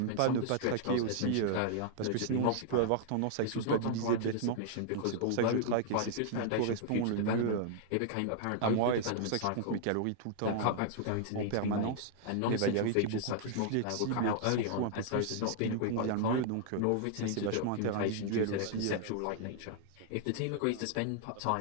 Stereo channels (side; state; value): both; different; correlation -0.01